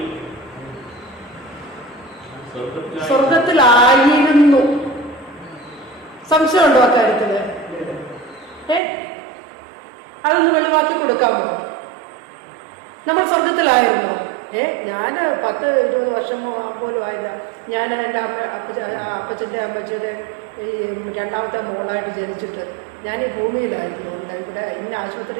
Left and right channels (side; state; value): left; drops out; at 8.8 s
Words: സ്വർഗത്തിലായിരുന്നു. സംശയമുണ്ടോ അക്കാര്യത്തില്? അതൊന്ന് വെളിവാക്കി കൊടുക്കാമോ? നമ്മൾ സ്വർഗത്തിലായിരുന്നോ? ഞാൻ 10-20 വർഷം പോലും ആയില്ല. ഞാൻ എൻ്റെ അപ്പച്ചൻ്റെ അമ്മച്ചിയുടെ ഈ രണ്ടാമത്തെ മോളായിട്ട് ജനിച്ചിട്ട് ഞാൻ ഈ ഭൂമിയിലായിരുന്നു. ഇവിടെ ഇന്ന